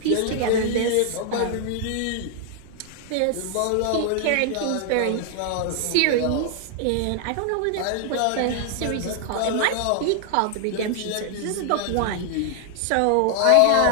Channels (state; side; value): different; both; correlation 0.00